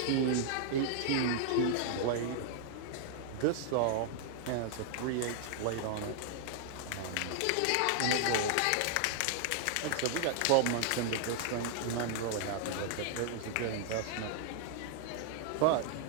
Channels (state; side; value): different; both; correlation 0.00